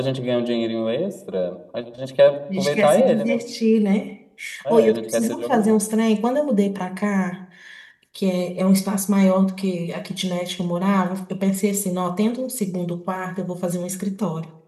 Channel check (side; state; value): both; identical; correlation 1.00